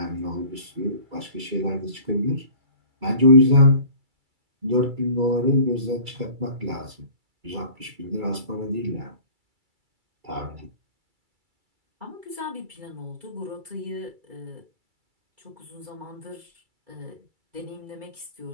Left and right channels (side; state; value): left; late; 2.3 ms